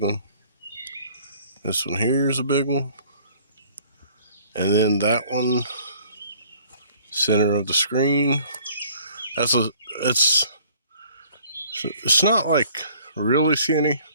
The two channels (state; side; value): inverted; both; correlation -0.55